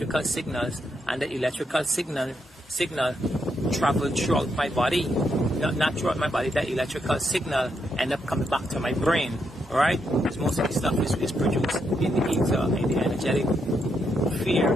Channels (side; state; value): both; normal; correlation 0.80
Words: signals, and the electrical signal travel throughout my body, not throughout my body. That electrical signal end up coming back to my brain, right? Because most of the stuff is produced in the ether, in the energetic sphere